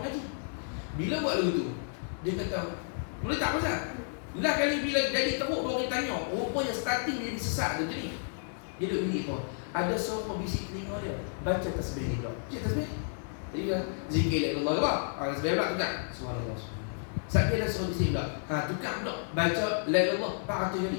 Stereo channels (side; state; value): right; silent; digital silence